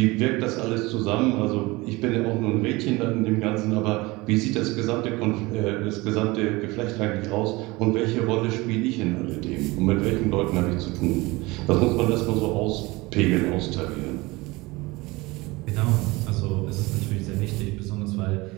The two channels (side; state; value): left; quieter; 22.5 dB